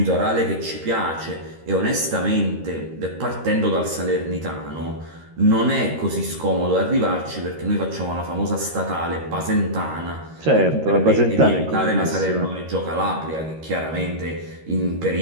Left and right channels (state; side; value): late; left; 13 ms